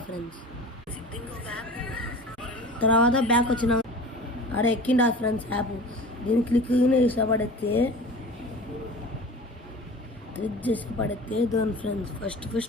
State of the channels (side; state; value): both; normal; correlation 0.38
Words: ఫ్రెండ్స్. తర్వాత బ్యాక్ వచ్చిన అక్కడ ఎక్కిండా ఫ్రెండ్స్ యాప్. దీన్ని క్లిక్ చేసి పడితే దాని ఫ్రెండ్స్